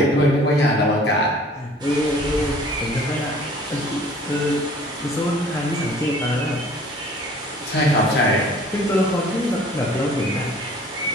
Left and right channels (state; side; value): normal; both; correlation 0.50